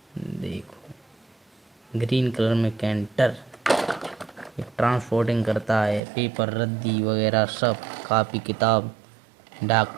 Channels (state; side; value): drops out; left; at 6.0 s